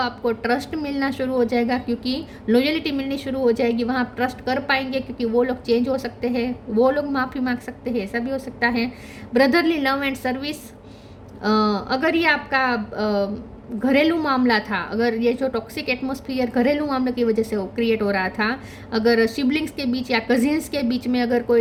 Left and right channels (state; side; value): identical; both; correlation 1.00